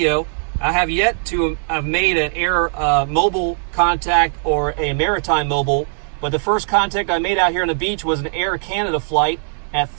I have yet to have made an air mobile contact or a maritime mobile, but the first contact I made out here on the beach was an Air Canada flight at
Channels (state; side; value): silent; left; digital silence